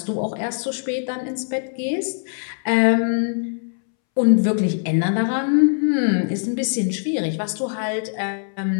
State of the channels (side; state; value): right; silent; 64 dB below the other